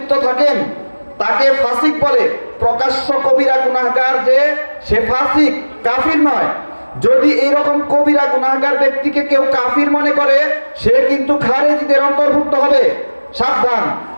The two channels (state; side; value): inverted; both; correlation -1.00